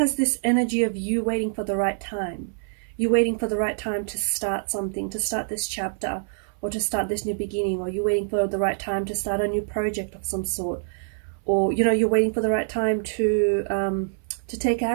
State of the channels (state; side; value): silent; left; 62 dB below the other